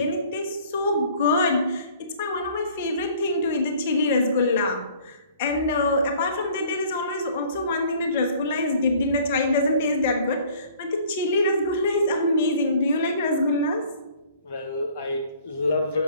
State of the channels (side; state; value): both; inverted; correlation -0.54